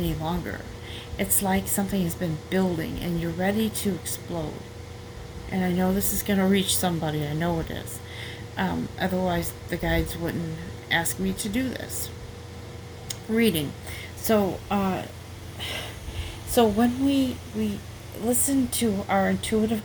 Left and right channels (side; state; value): both; identical; correlation 1.00